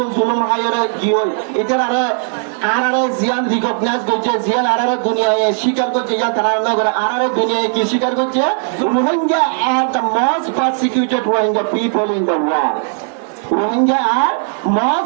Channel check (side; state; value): left; silent; 62 dB below the other